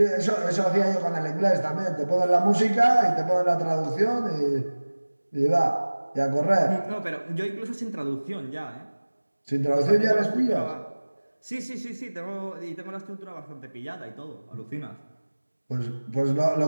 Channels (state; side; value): inverted; both; correlation -1.00